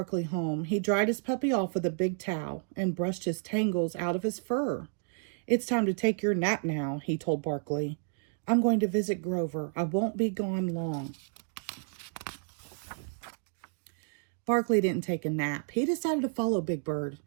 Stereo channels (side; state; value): left; silent; 56 dB below the other